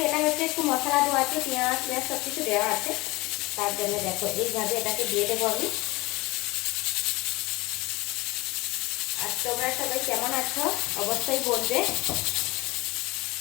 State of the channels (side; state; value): right; quieter; 22.2 dB